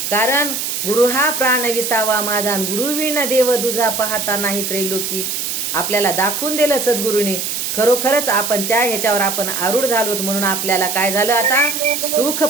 कारण गुरु हा प्राण विसावा माझा, आणि गुरुविन देव दुजा पाहता नाही त्रैलोकी. आपल्याला दाखवून दिलं सद्गुरूंनी. खरोखरच आपण त्या ह्याच्यावर आपण आरूढ झालोत. म्हणून आपल्याला काय झालं? आता सुख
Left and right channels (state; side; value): noise; right; hiss, 3 dB below the sound